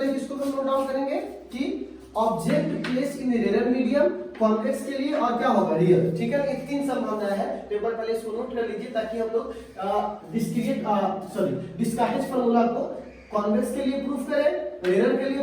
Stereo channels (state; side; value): identical; both; correlation 1.00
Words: किसको हम नोट डाउन करेंगे कि ऑब्जेक्ट प्लेस इन रेरर मीडियम, कॉन्वेक्स के लिए, और क्या होगा, रियल, ठीक है ना। ये तीन संभावनाएं हैं, पेपर पहले इसको नोट कर लीजिए ताकि हम लोग डिस्कार्टेज फार्मूला को कॉन्वेक्स के लिए प्रूफ करें, रेरर के